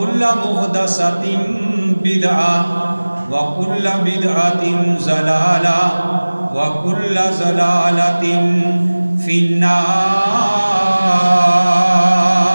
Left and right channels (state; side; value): inverted; both; correlation -1.00